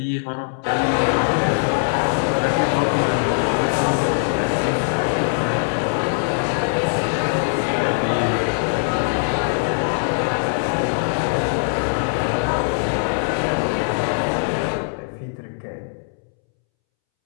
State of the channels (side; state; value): right; silent; 65 dB below the other